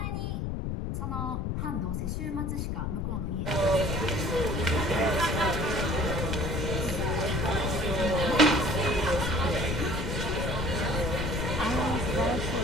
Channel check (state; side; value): noise; left; rumble, 1 dB below the sound